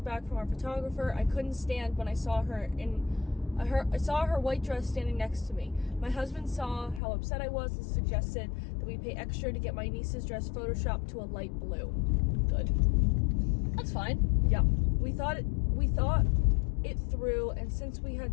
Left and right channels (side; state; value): right; drops out; at 7.0 s